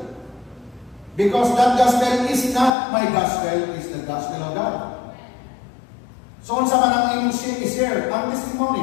Because that gospel is not my gospel, it's the gospel of God. So, unsa man ang imong share, ang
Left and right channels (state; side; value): drops out; right; at 2.7 s